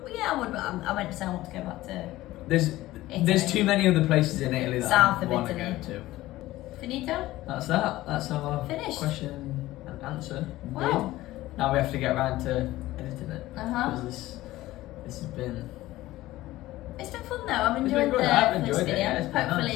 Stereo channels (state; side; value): quieter; right; 16.7 dB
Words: yeah, I would. But I went to say I want to go back to There's Italy. too many other places in Italy that South I of want to Italy. go to. Finito. That's that. That's our Finished. question and answer. Wow. Now we have to get around to editing it. Uh-huh. Because this has been. It's been fun though. I'm It's enjoying been good. the I've first enjoyed it, video. yeah, it's been nice,